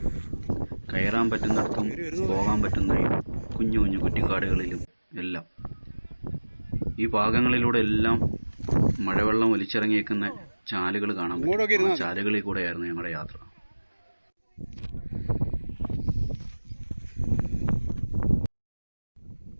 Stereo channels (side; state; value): both; inverted; correlation -1.00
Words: കയറാൻ പറ്റുന്നിടത്തും പോകാൻ പറ്റുന്ന കുഞ്ഞു കുഞ്ഞു കുറ്റിക്കാടുകളിലും എല്ലാം ഈ ഭാഗങ്ങളിലൂടെ എല്ലാം മഴവെള്ളം ഒലിച്ചിറങ്ങിയേക്കുന്ന ചാലുകൾ കാണാൻ പറ്റും. ചാലുകളിൽ കൂടെയായിരുന്നു ഞങ്ങളുടെ യാത്ര.